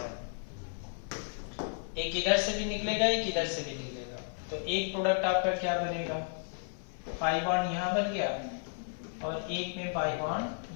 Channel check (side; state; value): right; silent; 56 dB below the other